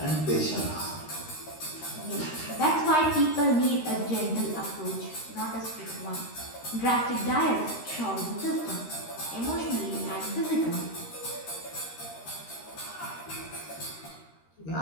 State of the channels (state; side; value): late; right; 13 ms